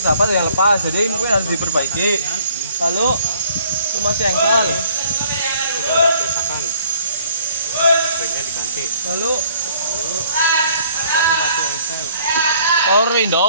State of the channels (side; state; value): both; inverted; correlation -0.60